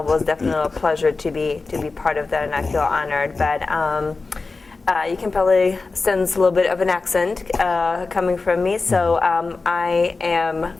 It was definitely a pleasure to be part of that, and I feel honored. But you can probably sense a little bit of an accent coming from me. So I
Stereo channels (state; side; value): quieter; right; 3.9 dB